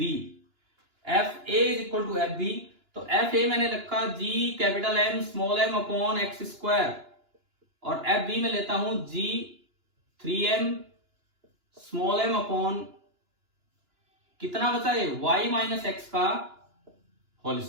FA is equal to FB, तो FA मैंने रखा G capital M small m upon x square, और FB में लेता हूं G 3m small m upon कितना बचा है y माइनस एक्स का होल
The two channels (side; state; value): left; late; 2.9 ms